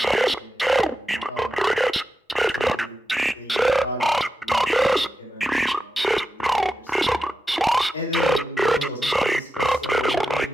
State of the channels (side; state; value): both; normal; correlation 0.89